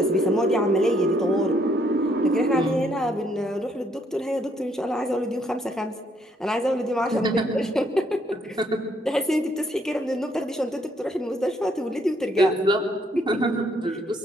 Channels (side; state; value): both; normal; correlation 0.69